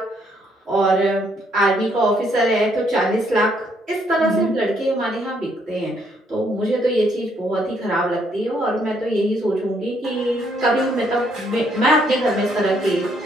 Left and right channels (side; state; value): both; normal; correlation 0.70